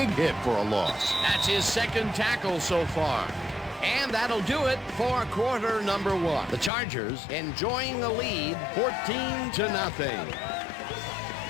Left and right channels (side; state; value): right; drops out; at 6.7 s